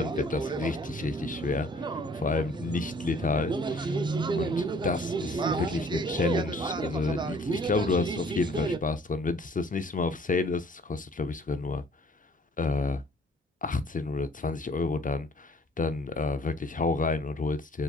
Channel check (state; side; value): normal; both; correlation 0.56